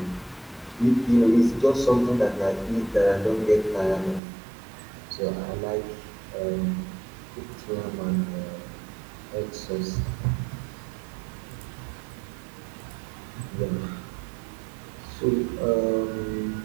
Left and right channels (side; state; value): left; drops out; at 4.2 s